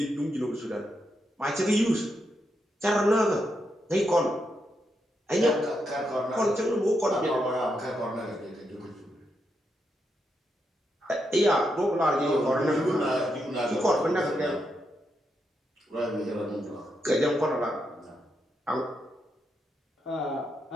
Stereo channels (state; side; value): normal; both; correlation 0.82